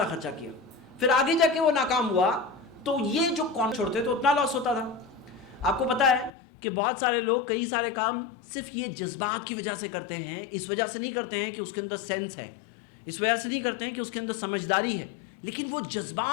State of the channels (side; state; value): right; drops out; at 6.3 s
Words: خرچہ کیا. پھر آگے جا کے وہ ناکام ہوا تو یہ جو کون چھوڑتے تو اتنا لاس ہوتا تھا. آپ کو پتا ہے کہ بہت سارے لوگ کئی سارے کام صرف یہ جذبات کی وجہ سے کرتے ہیں, اس وجہ سے نہیں کرتے ہیں کہ اس کے اندر سینس ہے, اس وجہ سے نہیں کرتے ہیں کہ اس کے اندر سمجھداری ہے, لیکن وہ